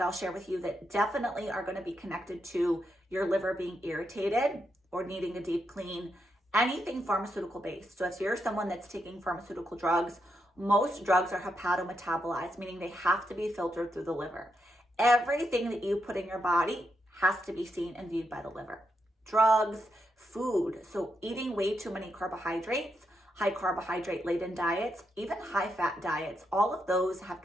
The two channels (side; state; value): both; normal; correlation 0.83